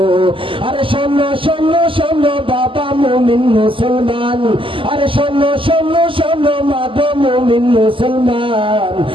আরে শোনো শোনো শোনো বাবা মুমিন মুসলমান, আরে শোনো শোনো শোনো মা গো মুমিন মুসলমান।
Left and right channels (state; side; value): late; left; 0.25 ms